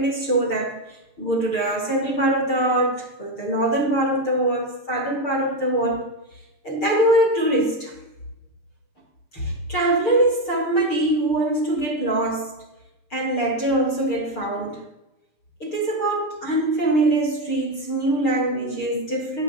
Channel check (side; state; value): right; late; 6.6 ms